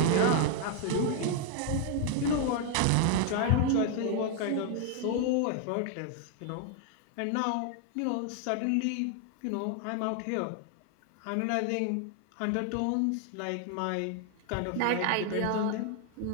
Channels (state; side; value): different; both; correlation 0.00